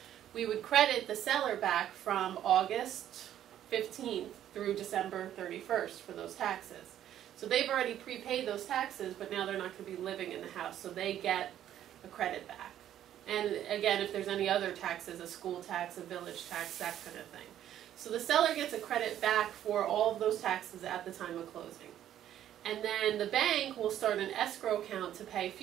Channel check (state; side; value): quieter; left; 11.3 dB